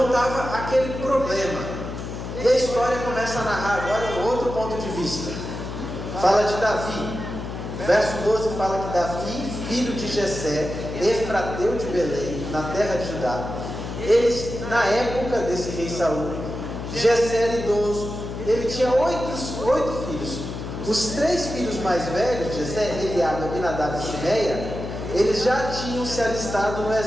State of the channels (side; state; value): left; noise; hum, 7 dB below the sound